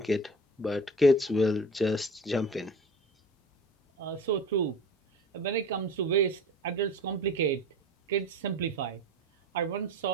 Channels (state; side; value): normal; both; correlation 0.37